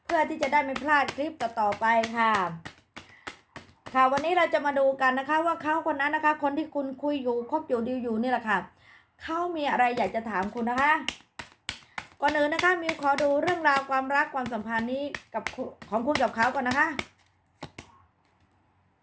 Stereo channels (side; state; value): both; identical; correlation 1.00